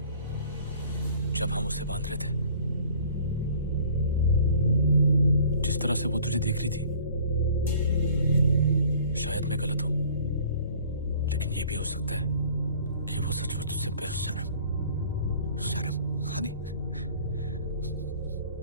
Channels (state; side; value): inverted; both; correlation -0.50